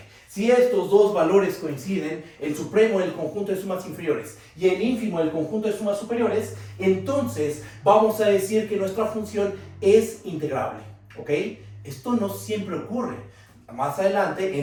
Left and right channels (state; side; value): identical; both; correlation 1.00